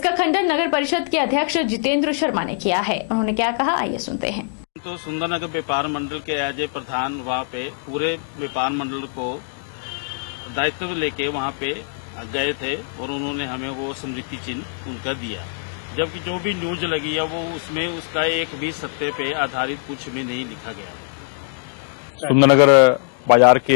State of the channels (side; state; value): right; silent; digital silence